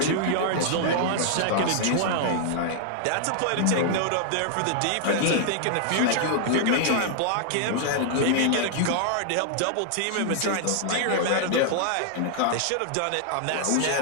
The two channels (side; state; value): both; different; correlation -0.01